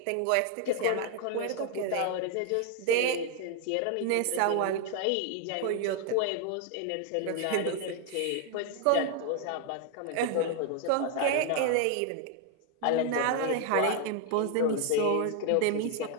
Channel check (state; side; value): different; both; correlation 0.00